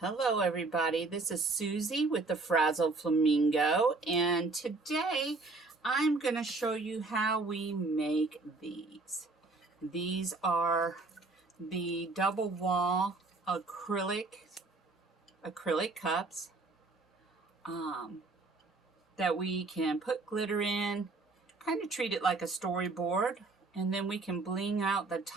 Hello everybody, this is Susie with the Frazzle Flamingo, and today I'm going to show you how we make these. These are the double wall acrylic cups that we can put glitter in, kind of treat it like a storyboard, and then we can bling out the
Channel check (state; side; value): quieter; left; 3.6 dB